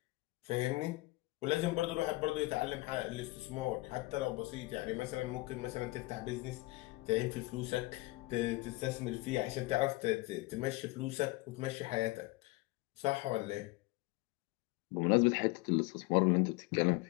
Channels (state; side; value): quieter; right; 21.8 dB